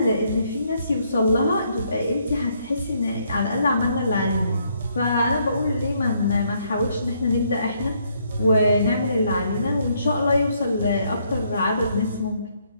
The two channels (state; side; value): inverted; both; correlation -0.71